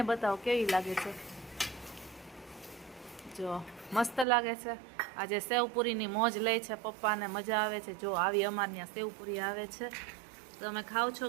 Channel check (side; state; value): left; drops out; at 4.2 s